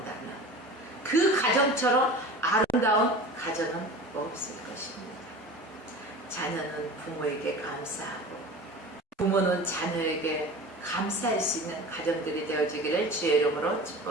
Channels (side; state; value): both; normal; correlation 0.36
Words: 그 가정처럼 아름다운 가정은 없을 것입니다. 자녀는 부모에게 감사하고 부모는 자녀에게 감사할 수 있는 가정들이 되어지기를 주의 이름으로